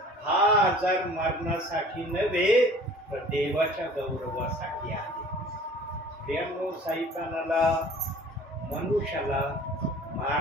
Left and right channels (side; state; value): both; normal; correlation 0.47